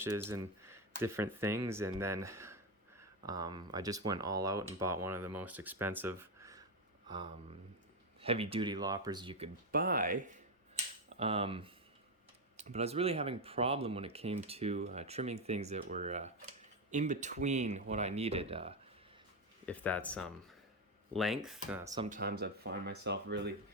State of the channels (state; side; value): normal; both; correlation 0.09